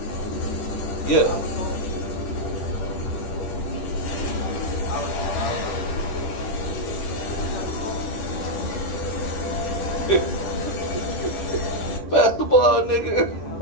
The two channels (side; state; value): right; late; 10 ms